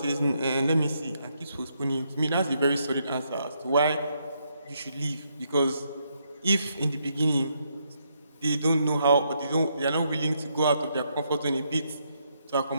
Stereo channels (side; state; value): both; inverted; correlation -0.77